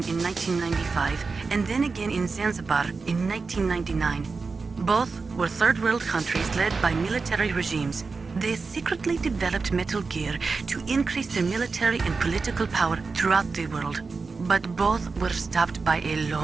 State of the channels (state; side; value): quieter; left; 4.4 dB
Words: in 1995, and then again in Zanzibar in 1999. Both were third world countries led by military regimes. They secretly developed Metal Gear to increase their military and political power throughout the world. But both were stopped by a